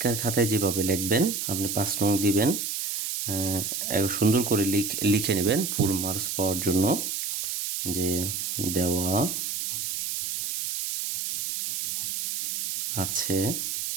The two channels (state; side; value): noise; right; hiss, 2 dB below the sound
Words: খাতায় যেভাবে লিখবেন, আপনি 5 নং দিবেন, সুন্দর করে লিখে নেবেন ফুল মার্কস পাওয়ার জন্য, যে দেওয়া আছে,